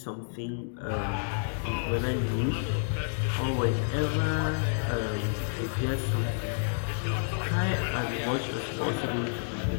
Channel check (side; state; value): right; silent; digital silence